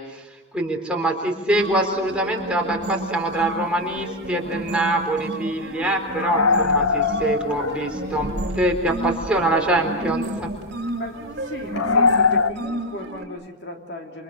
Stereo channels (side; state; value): both; normal; correlation 0.10